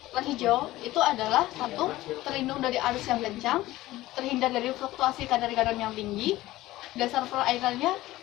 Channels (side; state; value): right; quieter; 16.8 dB